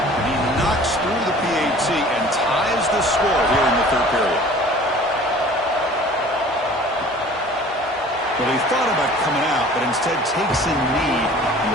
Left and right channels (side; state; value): both; normal; correlation 0.47